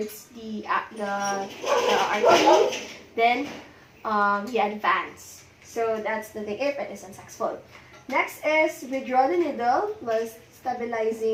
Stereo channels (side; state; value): both; identical; correlation 1.00